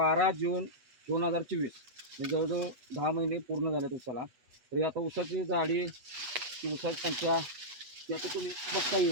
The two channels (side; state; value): left; late; 8.1 ms